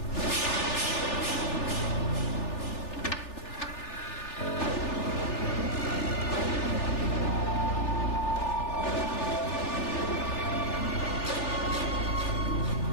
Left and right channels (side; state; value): right; late; 3.4 ms